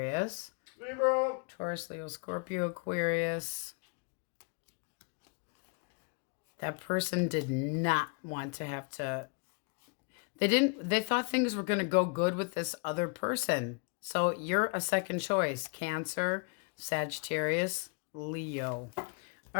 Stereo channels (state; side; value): quieter; right; 35.5 dB